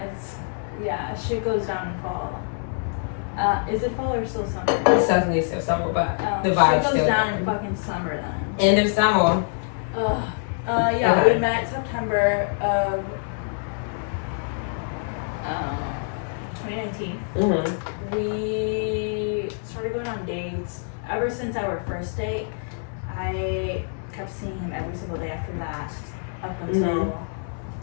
Yeah, shit goes down in fall. Is it fall or still summer? It's definitely still summer, but the vibe goes still down in fucking summer then. End of summer. Yeah, Okay. we met September of 2019. We started going on dates. Ever since our first date, I kept seeing him every single day after that, up until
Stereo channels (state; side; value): silent; right; 62 dB below the other